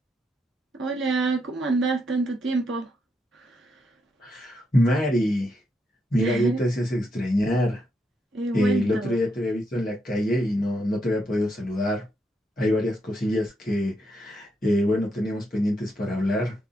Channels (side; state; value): both; normal; correlation 0.80